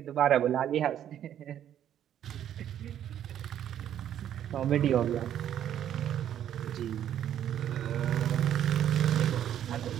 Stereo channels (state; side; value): quieter; left; 10.5 dB